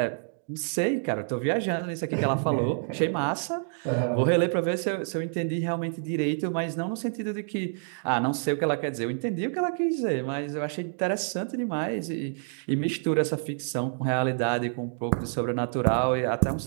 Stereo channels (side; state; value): left; silent; digital silence